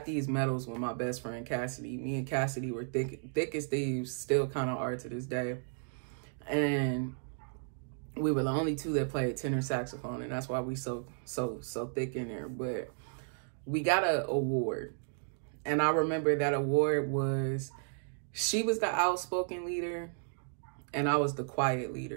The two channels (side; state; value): left; silent; digital silence